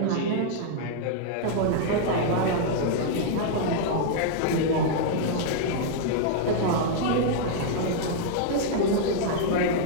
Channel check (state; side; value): different; both; correlation -0.01